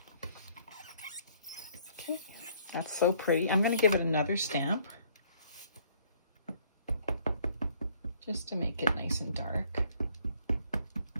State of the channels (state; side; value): inverted; both; correlation -0.62